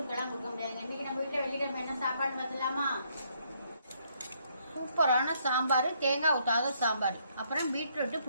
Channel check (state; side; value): inverted; both; correlation -0.70